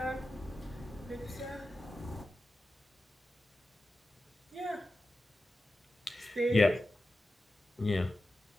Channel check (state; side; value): normal; both; correlation 0.92